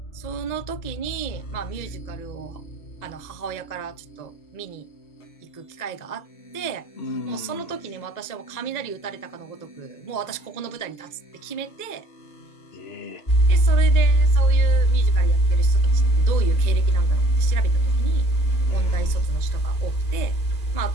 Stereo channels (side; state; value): right; late; 2.0 ms